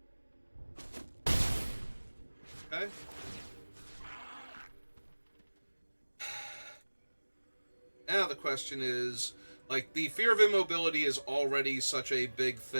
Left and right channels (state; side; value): inverted; both; correlation -1.00